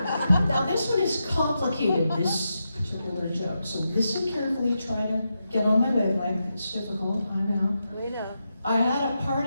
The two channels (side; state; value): both; inverted; correlation -0.87